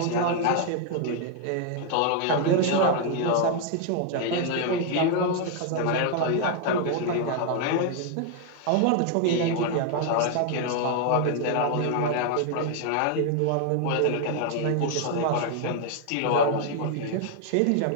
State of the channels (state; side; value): different; both; correlation 0.00